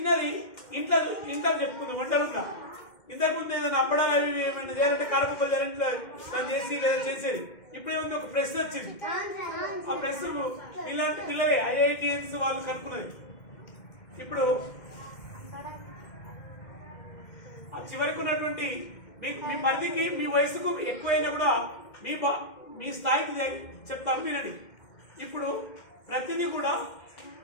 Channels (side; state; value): right; late; 2.1 ms